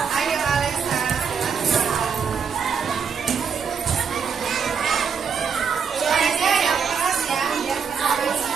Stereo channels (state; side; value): quieter; left; 6.4 dB